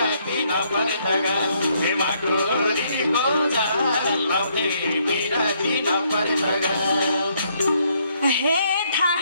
नपरे त हे माकुरीको छ लाउँथे बिराती नपरे त हे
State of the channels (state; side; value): inverted; both; correlation -0.70